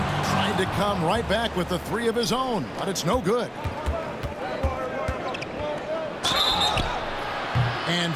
Tried to come right back with the three of his own, but it's no good. And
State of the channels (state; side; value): identical; both; correlation 1.00